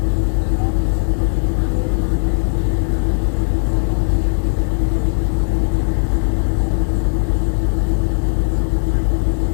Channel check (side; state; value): right; silent; 59 dB below the other